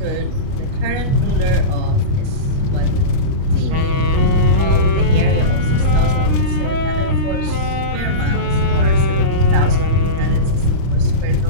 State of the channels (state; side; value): late; left; 30 ms